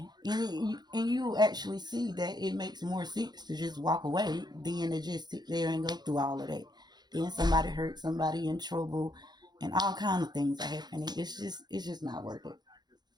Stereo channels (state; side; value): late; left; 0.20 ms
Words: And you actually see that it makes more sense to just walk away than to just sit there and go through all of that. Then somebody hurt, somebody in trouble, and all kind of things are happening. It's just not worth it.